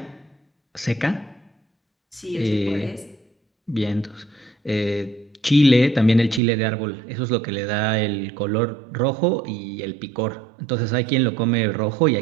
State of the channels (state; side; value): drops out; left; at 6.4 s